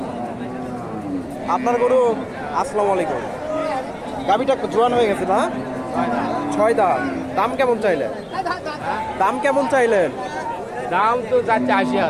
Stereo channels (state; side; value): identical; both; correlation 1.00